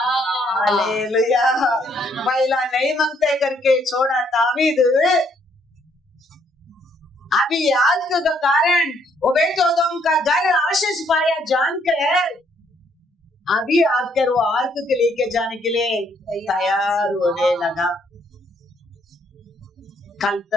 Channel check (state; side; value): normal; both; correlation 0.69